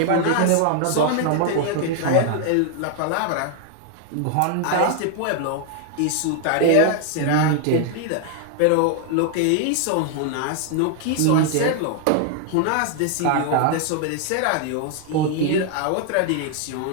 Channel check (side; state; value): both; different; correlation 0.00